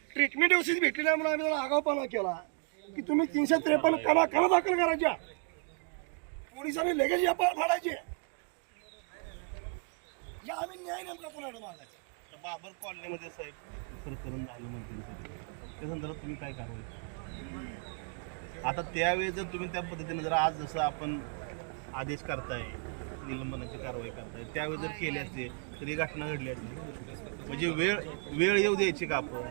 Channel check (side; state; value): left; quieter; 37.6 dB